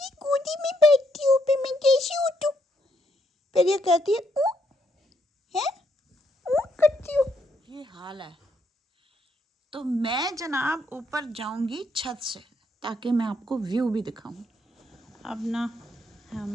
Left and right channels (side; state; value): both; normal; correlation 0.74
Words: गोदी में बैठती हो, फिर मैं कैसी उठूं? फिर ये कहती है करती हो। ये हाल है। तो मैं जनाब ऊपर जाऊंगी छत से ताकि मैं आपको व्यू भी दिखाऊं। अब ना